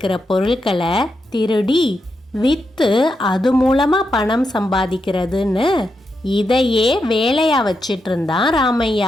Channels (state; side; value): normal; both; correlation 0.85